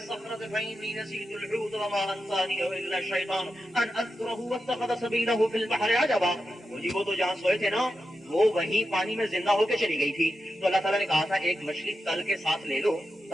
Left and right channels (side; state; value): both; normal; correlation 0.89